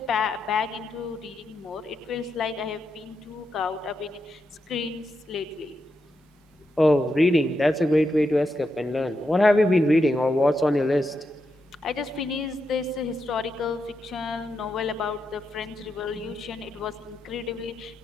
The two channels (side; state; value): both; normal; correlation 0.85